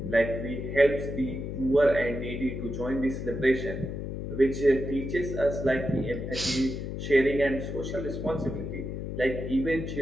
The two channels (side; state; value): left; noise; hum, 5 dB below the sound